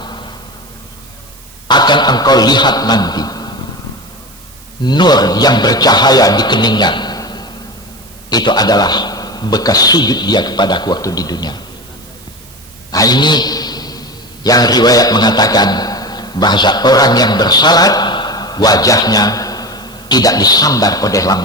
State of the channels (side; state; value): right; noise; hiss, 23 dB below the sound